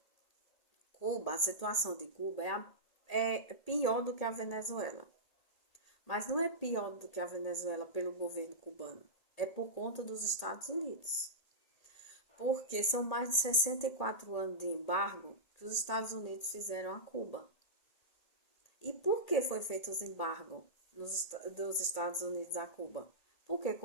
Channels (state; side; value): late; right; 1.8 ms